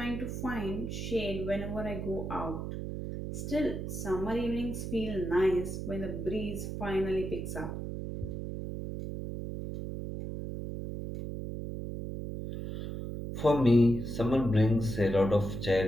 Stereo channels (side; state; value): right; noise; hum, 5 dB below the sound